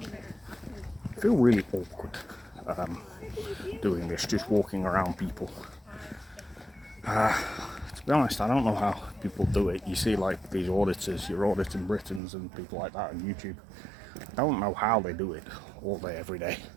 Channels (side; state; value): left; drops out; at 12.2 s